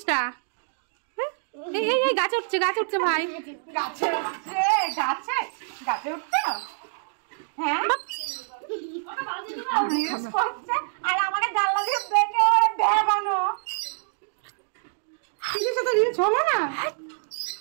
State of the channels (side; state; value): left; silent; digital silence